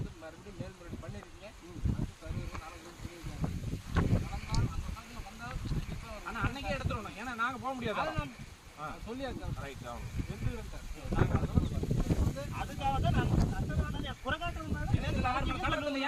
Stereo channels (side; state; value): both; identical; correlation 1.00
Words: ஆனா அன்னைக்கே எடுத்துடணும், ஏன்னா நாங்க போக முடியாது. அதுக்காக தான் நான்